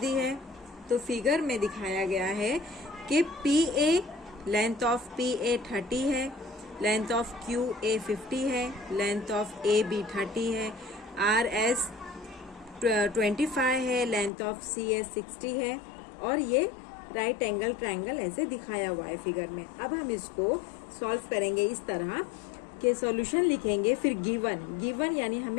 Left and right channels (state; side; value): drops out; right; at 14.3 s